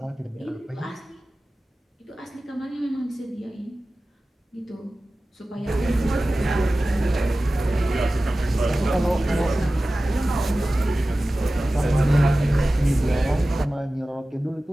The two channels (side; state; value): both; normal; correlation 0.96